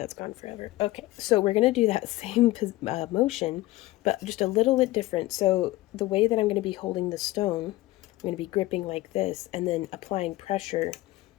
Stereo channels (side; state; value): right; quieter; 18.2 dB